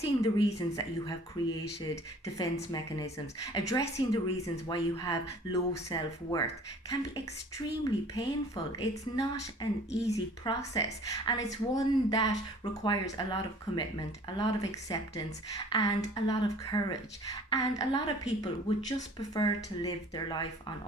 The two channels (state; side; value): normal; both; correlation 0.50